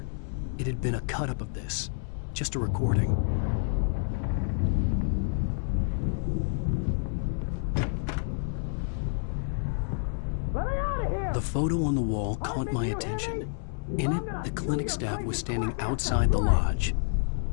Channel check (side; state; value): right; silent; 59 dB below the other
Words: It had been a cut-up of this. Just a recording. The photo on the wall caught my attention. In it, the clinic staff was standing outside the lodge.